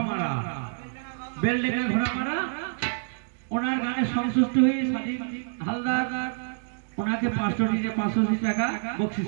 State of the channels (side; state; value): left; silent; digital silence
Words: মারা, বেলডেঙ্গা ঘোড়া মারা, ওনার গানে সন্তুষ্ট হয়ে স্বাধীন হালদার ওনাকে 580 টাকা বকশিশ